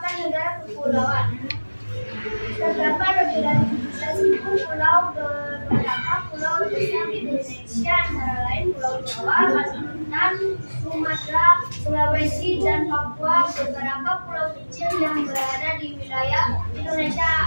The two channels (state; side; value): inverted; both; correlation -1.00